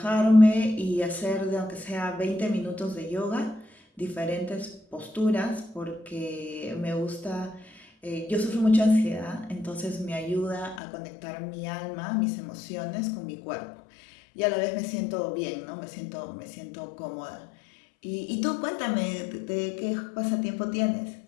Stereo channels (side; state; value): right; drops out; at 10.8 s